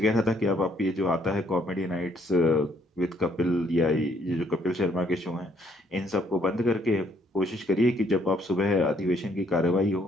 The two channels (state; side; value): normal; both; correlation 0.68